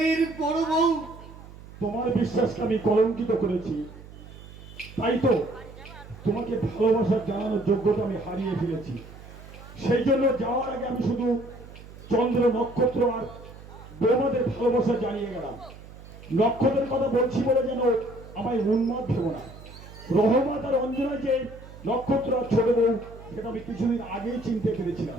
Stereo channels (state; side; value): noise; right; hum, 17 dB below the sound